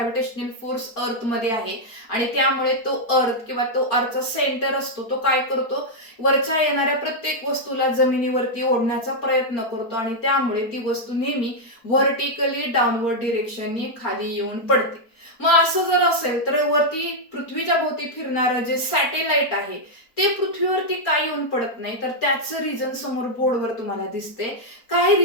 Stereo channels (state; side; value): late; right; 4.3 ms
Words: फोर्स अर्थ मध्ये आहे आणि त्यामुळे तो अर्थ किंवा तो अर्थचा सेंटर असतो तो काय करतो वरच्या येणाऱ्या प्रत्येक वस्तूला जमिनीवरती ओढण्याचा प्रयत्न करतो आणि त्यामुळे ती वस्तू नेहमी व्हर्टिकली डाऊनवर्ड डिरेक्शननी खाली येऊन पडते. मग असं जर असेल तर वरती पृथ्वीच्या भोवती फिरणारं जे सॅटेलाइट आहे ते पृथ्वीवरती का येऊन पडत नाही तर त्याचं रिझन समोर बोर्डवर तुम्हाला दिसते. काय